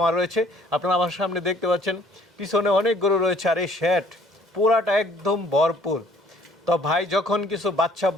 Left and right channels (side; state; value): both; normal; correlation 0.58